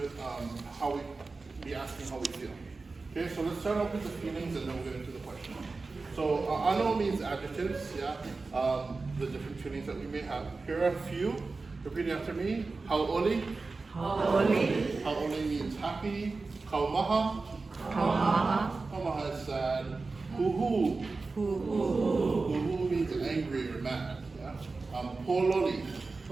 how we be asking how we feel. Okay, so let's start off with the feelings and then we'll get into the question. So ʻAʻano means adjectives, yeah. The different feelings that we may have. Here are a few. Repeat after me. Hauʻoli. Hauʻoli. Hauʻoli means happy. Kaumaha. Kaumaha. Kaumaha is sad. Huhu. Huhu means angry or mad. Yeah. Pololi.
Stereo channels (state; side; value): quieter; left; 3.9 dB